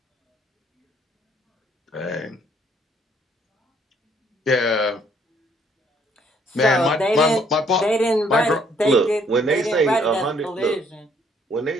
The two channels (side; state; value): both; normal; correlation 0.65